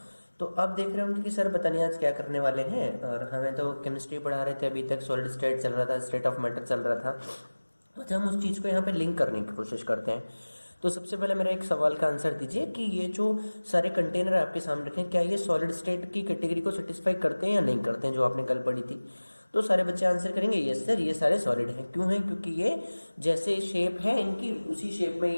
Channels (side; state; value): both; inverted; correlation -1.00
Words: तो आप देख रहे होंगे कि सर पता नहीं आज क्या करने वाले हैं। और हमें तो केमिस्ट्री पढ़ा रहे थे, अभी तक सॉलिड स्टेट चल रहा था, स्टेट ऑफ मैटर चल रहा था। अच्छा, हम उस चीज़ को यहाँ पे लिंक करने की कोशिश करते हैं। तो सबसे पहले मेरा एक सवाल का आंसर दीजिए कि ये जो सारे कंटेनर आपके सामने रखे हैं, क्या ये सॉलिड स्टेट की कैटेगरी को सेटिस्फाई करते हैं या नहीं करते हैं, जो आपने कल पढ़ी थी। तो सारे बच्चे आंसर करेंगे यस सर, ये सारे सॉलिड हैं। क्यों हैं? क्योंकि ये जैसे शेप है इनकी, उसी शेप में